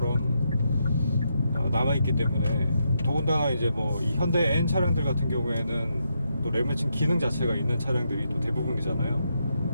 남아있기 때문에, 더군다나 이제 뭐 이 현대 N 차량들 같은 경우에는 또 레브 매칭 기능 자체가 있는 차량들이 또 대부분이잖아요.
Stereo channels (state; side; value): inverted; both; correlation -0.81